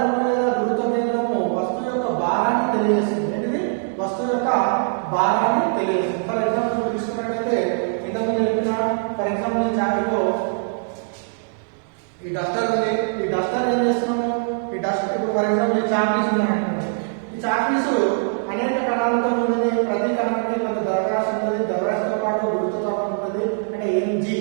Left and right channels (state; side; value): silent; left; digital silence